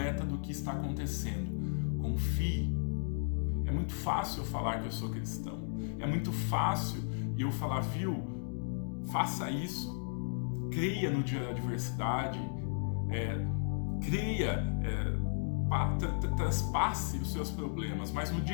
do que está acontecendo. Confie. É muito fácil eu falar que eu sou cristão, é muito fácil eu falar, viu? Faça isso, creia no dia da adversidade, traspasse os seus problemas, mas no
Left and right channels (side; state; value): right; silent; digital silence